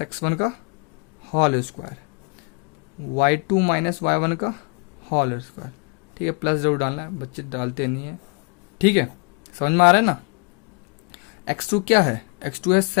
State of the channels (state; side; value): quieter; right; 34.9 dB